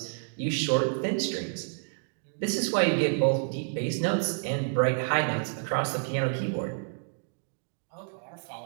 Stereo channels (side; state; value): left; silent; digital silence